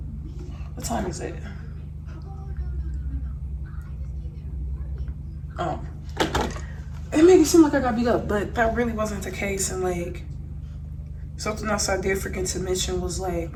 What time is it? Oh. It made it seem like I got beat up, but that really wasn't the case. And like, something else I did forget to mention was like,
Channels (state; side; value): identical; both; correlation 1.00